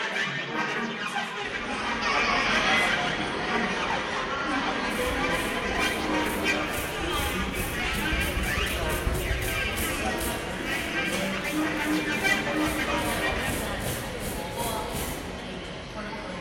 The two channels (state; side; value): identical; both; correlation 1.00